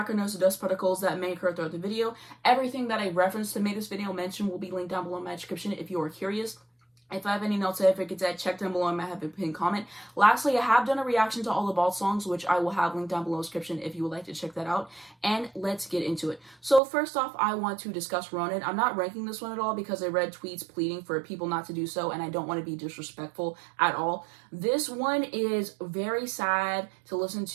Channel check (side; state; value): left; drops out; at 16.8 s